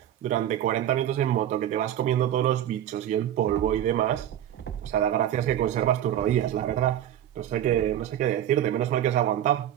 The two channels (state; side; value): quieter; left; 11.2 dB